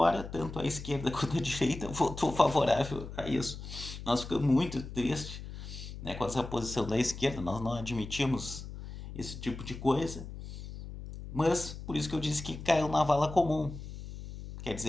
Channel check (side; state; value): left; noise; hum, 11 dB below the sound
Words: tanto a esquerda quanto a direita votou favorável a isso. Nós ficamos muito tristes, né, com essa posição da esquerda, nós não admitimos esse tipo de coisa, mas por isso que eu disse que caiu na vala comum. Quer